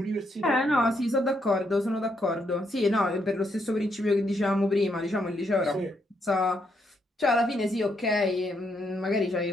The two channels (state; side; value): normal; both; correlation 0.77